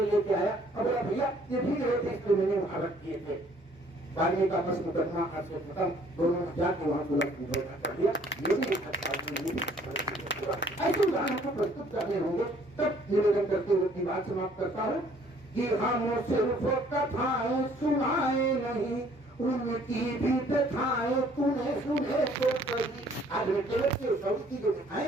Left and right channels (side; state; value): both; normal; correlation 0.59